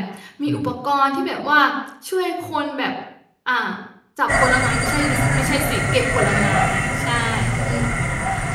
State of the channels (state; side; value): identical; both; correlation 1.00